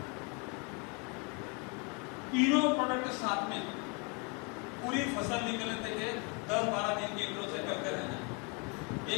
तीनों प्रोडक्ट के साथ में पूरी फसल निकलने तक 10-12 दिन के इंटरवल से करते रहना। ये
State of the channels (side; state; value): right; quieter; 33.0 dB